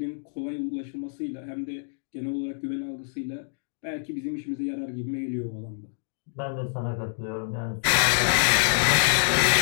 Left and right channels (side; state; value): right; silent; digital silence